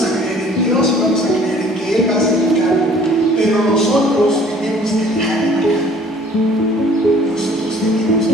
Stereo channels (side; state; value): both; normal; correlation 0.54